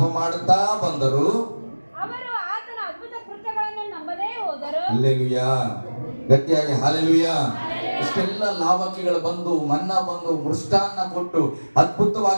ಮಾಡುತ್ತಾ ಬಂದರು. ಹಲ್ಲೆಲೂಯಾ. ಗಟ್ಟಿಯಾಗಿ ಹಾಲೆಲೂಯಾ. ಇಷ್ಟೆಲ್ಲ ಲಾವಕಿಗಳು ಬಂದು, ಮನ್ನಾ ಬಂದು, ಮೃಷ್ಟಾನ್ನ ಕೊಟ್ಟು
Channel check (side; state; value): both; inverted; correlation -1.00